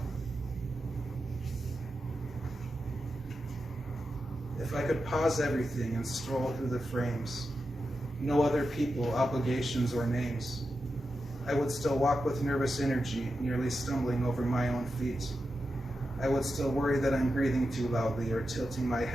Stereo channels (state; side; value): normal; both; correlation 0.89